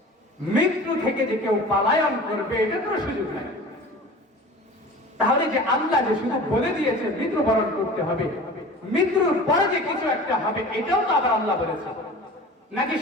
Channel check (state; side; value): normal; both; correlation 0.39